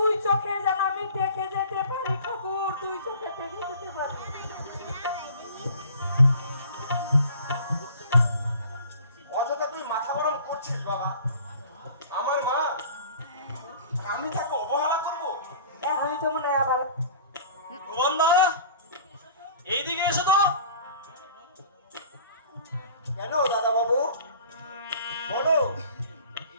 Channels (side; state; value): both; inverted; correlation -0.45